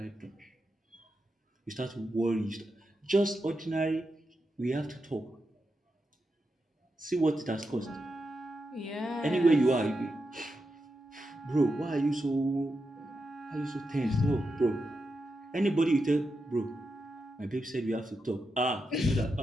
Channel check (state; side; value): normal; both; correlation 0.87